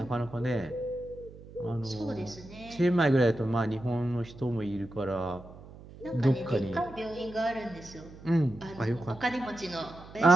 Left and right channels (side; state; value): right; noise; hum, 18 dB below the sound